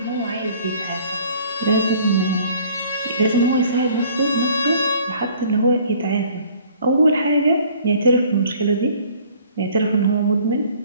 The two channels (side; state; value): both; inverted; correlation -0.55